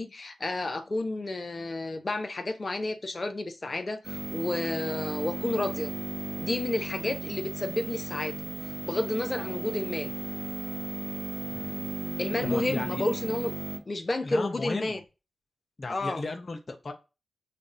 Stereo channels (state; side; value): normal; both; correlation 0.93